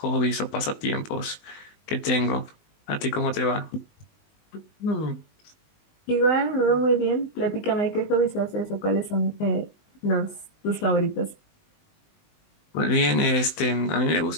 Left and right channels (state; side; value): late; right; 19 ms